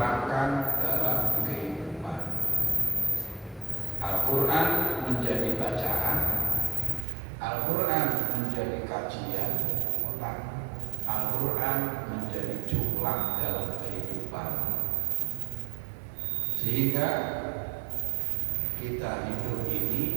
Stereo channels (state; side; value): drops out; left; at 7.1 s